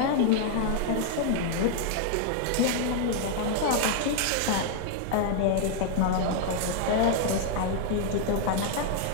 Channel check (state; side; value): different; both; correlation 0.00